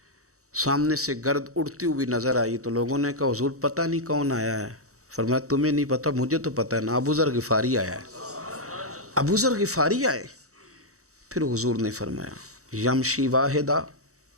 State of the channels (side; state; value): left; late; 0.65 ms